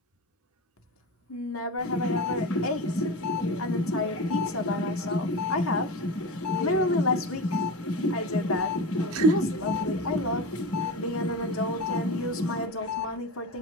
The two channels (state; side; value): normal; both; correlation 0.26